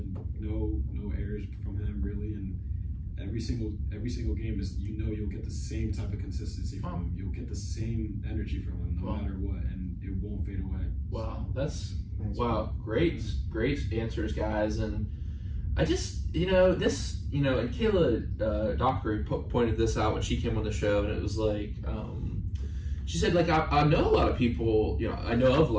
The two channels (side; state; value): both; identical; correlation 1.00